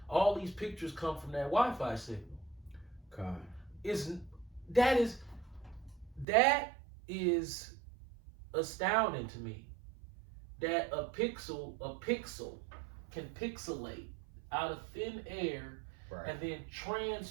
All these pictures come from that Wi-Fi signal. God. that is astounding to me. That a pixel can pixelate out of thin air Right. and then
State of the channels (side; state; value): left; drops out; at 6.2 s